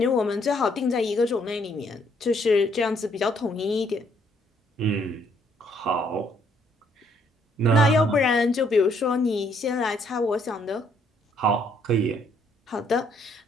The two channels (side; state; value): both; normal; correlation 0.68